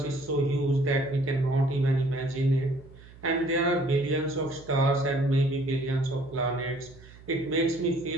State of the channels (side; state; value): right; noise; hum, 21 dB below the sound